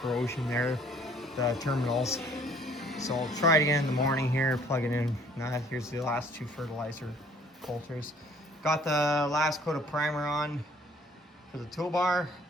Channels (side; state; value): both; normal; correlation 0.57